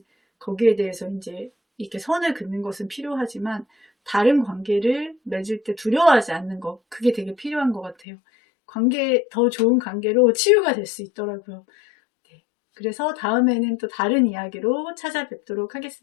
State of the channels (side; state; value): right; drops out; at 8.0 s